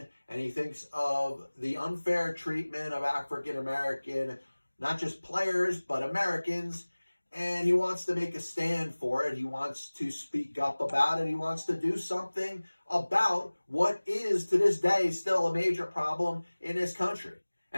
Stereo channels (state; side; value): inverted; both; correlation -1.00